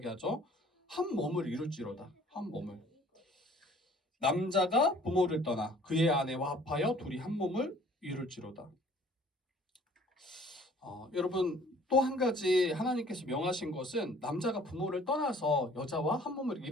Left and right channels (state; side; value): normal; both; correlation 0.54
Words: 한 몸을 이룰지로다. 한 몸을. 남자가 부모를 떠나 그의 아내와 합하여 둘이 한 몸을 이룰지로다. 여러분 또 한 가지 하나님께서 명하신 것은 남자가 부모를 떠나서 여자와 한 몸을